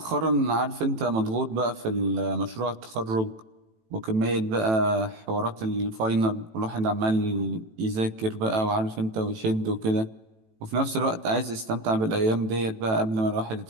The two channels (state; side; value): late; left; 18 ms